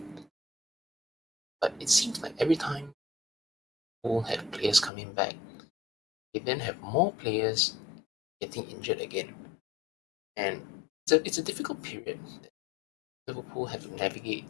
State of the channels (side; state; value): right; drops out; at 4.9 s